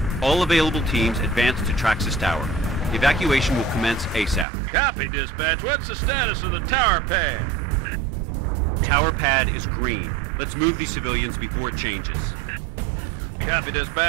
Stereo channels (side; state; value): left; drops out; at 4.5 s